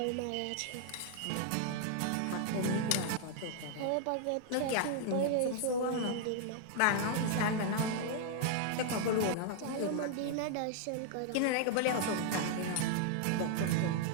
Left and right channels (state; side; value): different; both; correlation 0.00